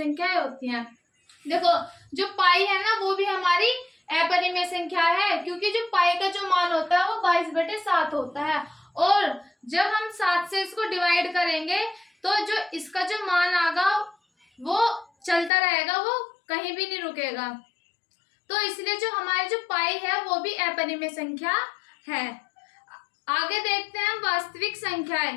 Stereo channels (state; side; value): drops out; right; at 15.5 s